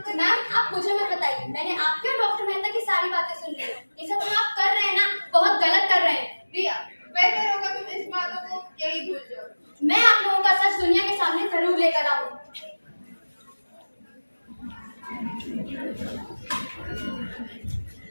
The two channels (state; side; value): inverted; both; correlation -1.00